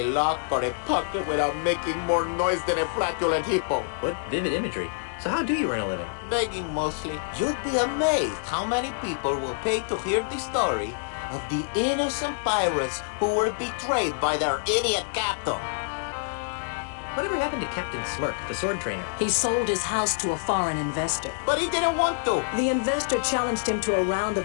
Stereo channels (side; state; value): right; silent; digital silence